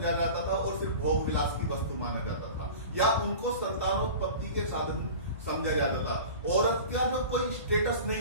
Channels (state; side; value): inverted; both; correlation -0.37